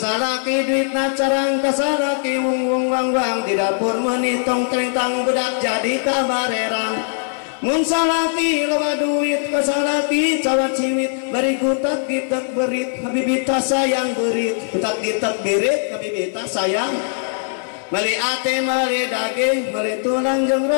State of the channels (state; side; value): silent; right; 56 dB below the other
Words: duitna carang kasalaki wung wang di dapur menitong trengtang budak jadi kabarerang mun salaki loba duit kasalaki cawat cimit bari kutak gitak berit habibita sayang berit kutak gitak berit habibita sayang mali ate mali daging mali tulang jeung